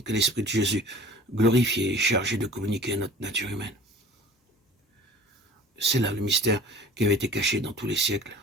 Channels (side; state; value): both; normal; correlation 0.45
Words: que l'Esprit de Jésus, glorifié et chargé de communiquer à notre nature humaine. C'est là le mystère qui avait été caché dans tous les siècles